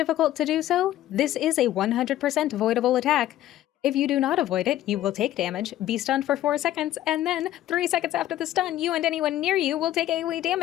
to do so, this is a 100% avoidable attack. If you do not avoid it, you will take damage, be stunned for 4 seconds, and then 3 seconds after the stun, you and anyone near you will take AoE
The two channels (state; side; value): quieter; right; 13.4 dB